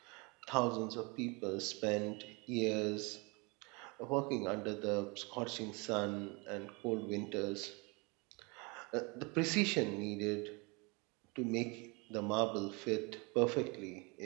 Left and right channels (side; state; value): left; quieter; 28.7 dB